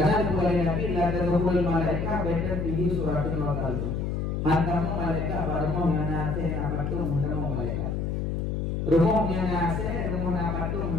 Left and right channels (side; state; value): left; noise; hum, 1 dB below the sound